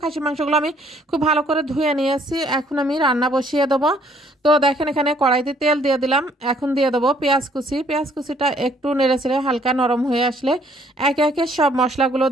খাসির মাংসগুলো আমি খুব ভালো করে ধুয়ে নিয়ে আসি। এখন আমি রান্না বসিয়ে দেবো। তো দেখেন, এখানে কড়াইতে তেল দিয়ে দিলাম। এখন দিয়ে দেবো পেঁয়াজ কুচি। পেঁয়াজ কুচিটা একটু নেড়েচেড়ে হালকা নরম হয়ে আসলে একে একে সব মশলাগুলো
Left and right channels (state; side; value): normal; both; correlation 0.63